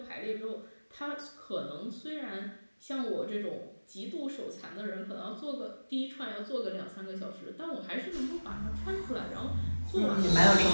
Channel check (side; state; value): both; inverted; correlation -1.00